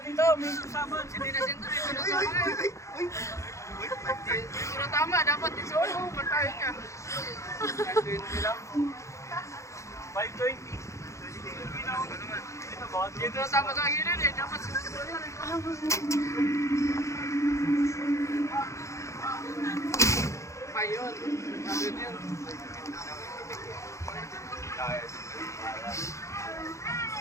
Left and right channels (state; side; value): late; right; 0.14 ms